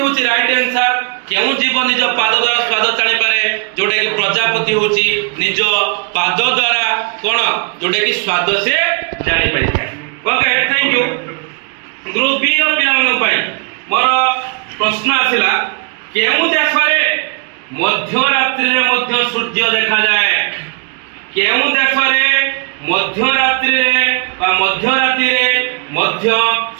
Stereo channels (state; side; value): quieter; left; 36.8 dB